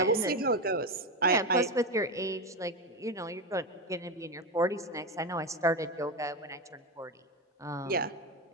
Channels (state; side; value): normal; both; correlation 0.15